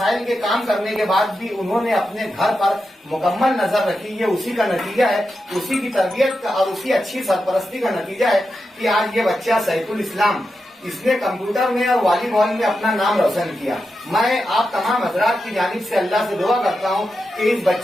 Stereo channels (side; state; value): both; normal; correlation 0.89